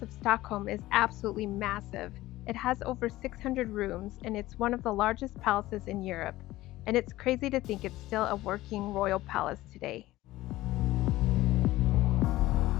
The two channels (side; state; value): right; quieter; 17.0 dB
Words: of Stockholm is absolutely massive. It has over 600 rooms and it's one of the largest palaces in Europe. And it's crazy to think it's still a working royal palace today.